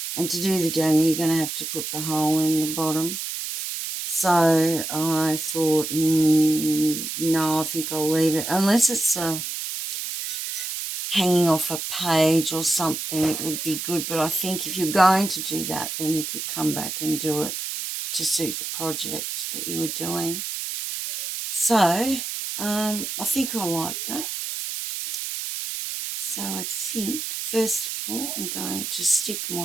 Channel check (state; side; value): noise; right; hiss, 5 dB below the sound